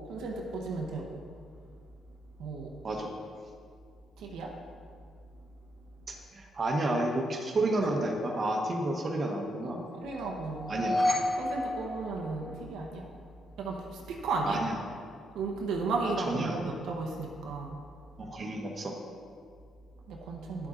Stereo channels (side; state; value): both; normal; correlation 0.79